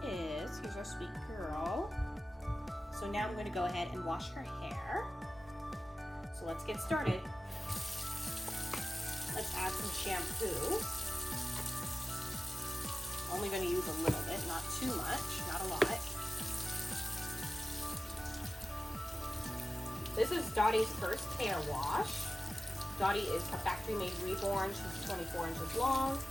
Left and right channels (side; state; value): both; normal; correlation 0.95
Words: is. Here's our sweet girl. So now I'm going to go ahead and wash her hair. So let's get started. Let's add some shampoo. Only going to use a little bit, not too much, not a lot. This is Dottie's first hair wash. Dottie is a factory-made reborn. She's 24 inches long.